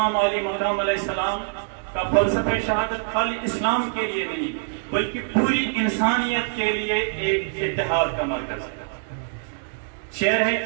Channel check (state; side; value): silent; left; digital silence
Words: علی مقام علیہ السلام کا فلسفہ شہادت خالی اسلام کے لیے نہیں بلکہ پوری انسانیت کے لیے ایک اتحاد کا مرکز ہے۔ شعر ہے